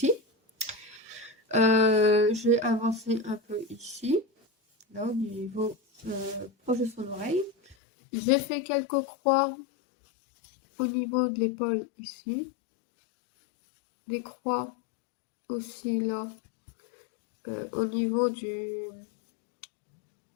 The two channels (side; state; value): right; drops out; at 7.8 s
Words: J'ai avancé un peu ici. là au niveau proche de son oreille. J'ai fait quelques croix au niveau de l'épaule ici. Des croix aussi là au niveau du